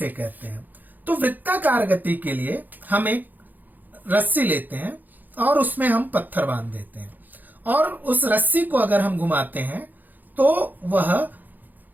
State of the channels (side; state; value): left; late; 0.085 ms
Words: कहते हैं? तो वृत्ताकार गति के लिए हम एक रस्सी लेते हैं और उसमें हम पत्थर बांध देते हैं, और उस रस्सी को अगर हम घुमाते हैं तो वह